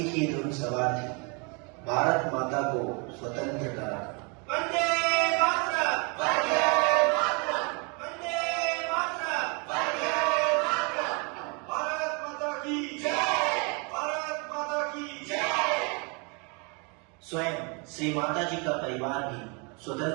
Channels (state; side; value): quieter; left; 32.7 dB